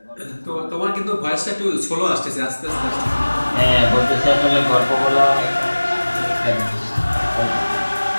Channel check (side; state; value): both; inverted; correlation -1.00